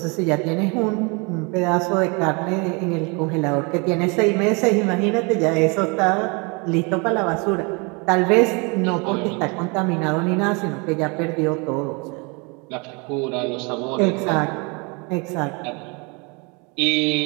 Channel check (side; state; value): left; quieter; 30.8 dB